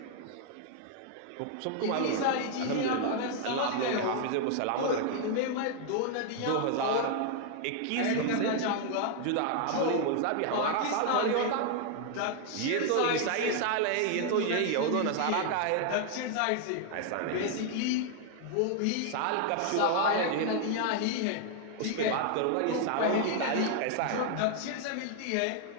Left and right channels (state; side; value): different; both; correlation 0.00